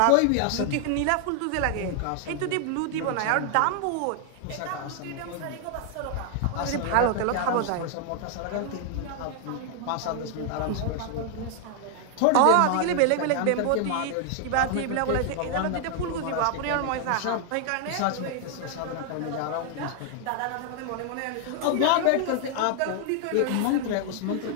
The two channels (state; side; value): different; both; correlation 0.00